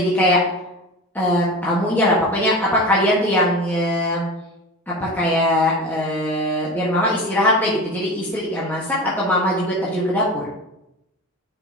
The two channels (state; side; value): normal; both; correlation 0.30